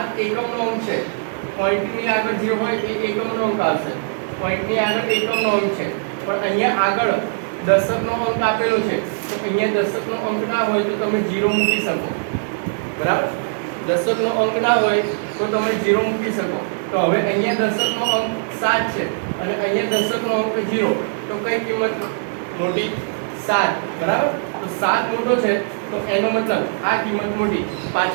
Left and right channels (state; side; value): silent; left; digital silence